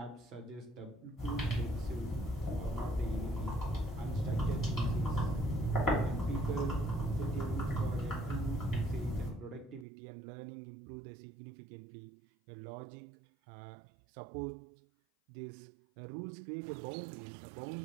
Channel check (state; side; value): drops out; left; at 9.9 s